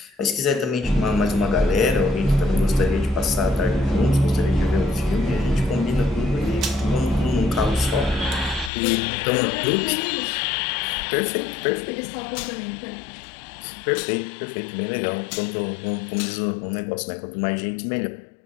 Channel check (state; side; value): drops out; right; at 8.7 s